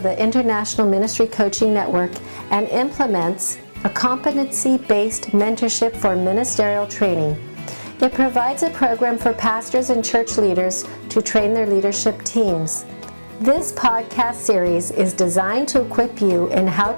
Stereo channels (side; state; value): both; inverted; correlation -1.00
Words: the International Ministry Coaching Network and implements a competency-based mentorship for ministerial training. It provides a program for pastors and church leaders to train their leadership teams. This podcast series is designed to equip you in how